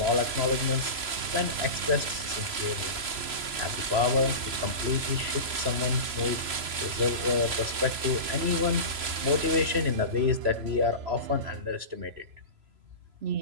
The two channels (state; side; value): late; left; 3.0 ms